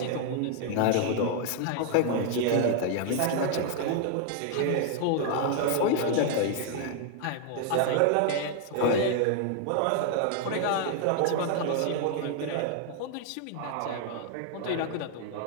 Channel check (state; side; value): different; both; correlation 0.00